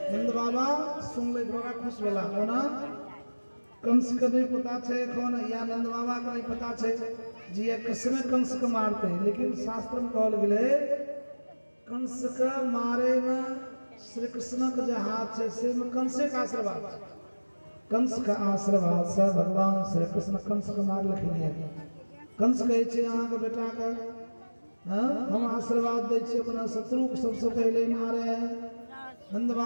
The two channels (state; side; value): inverted; both; correlation -1.00